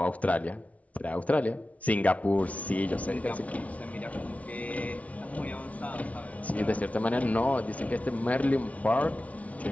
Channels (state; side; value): late; right; 0.068 ms